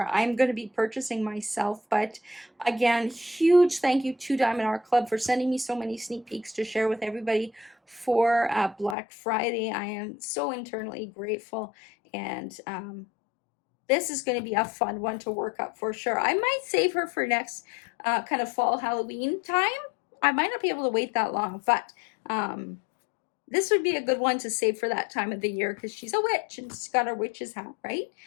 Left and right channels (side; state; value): right; drops out; at 9.0 s